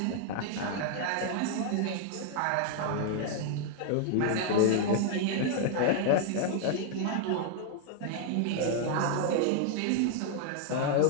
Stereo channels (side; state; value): both; different; correlation 0.00